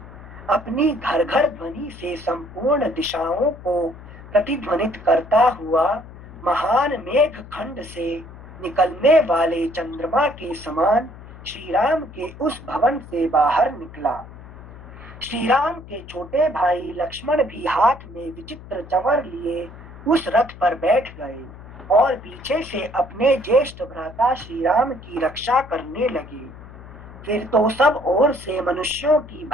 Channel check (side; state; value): left; noise; hum, 17 dB below the sound